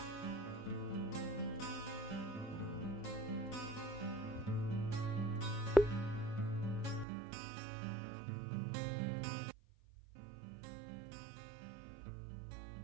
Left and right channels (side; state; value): left; drops out; at 7.1 s